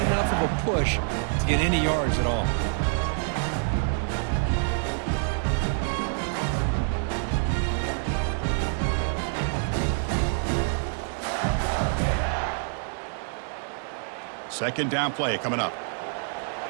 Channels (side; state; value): left; silent; 60 dB below the other